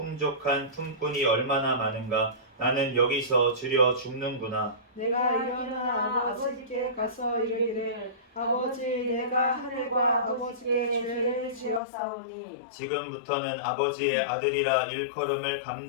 품꾼이 얼마나 많은가. 나는 여기서 주려 죽는구나. 내가 일어나 아버지께 가서 이르기를 아버지 내가 하늘과 아버지께 죄를 지었사오니 지금부터는 아버지의 아들이라 일컬음을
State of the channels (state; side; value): drops out; right; at 11.8 s